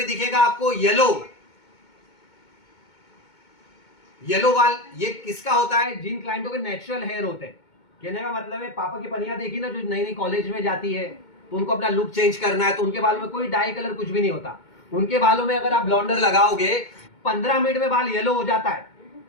दिखेगा आपको येलो बाल। ये किसका होता है? जिन क्लाइंटों के नेचुरल हेयर होते हैं। कहने का मतलब है पापा की पनिया देखी ना, जो नई नई कॉलेज में जाती है तो उनको अपना लुक चेंज करना है, तो उनके बाल में कोई डाई कलर कुछ भी नहीं होता। उनके बालों में अगर आप ब्लॉन्डर लगाओगे 15 मिनट में बाल येलो हो जाता है,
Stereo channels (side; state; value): right; late; 2.2 ms